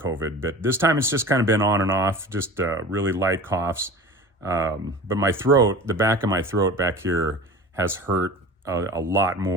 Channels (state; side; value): normal; both; correlation 0.36